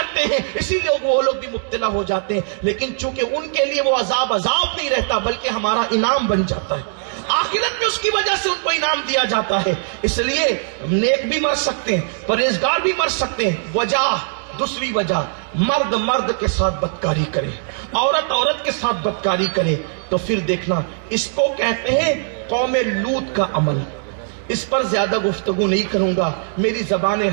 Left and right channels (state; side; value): silent; left; 64 dB below the other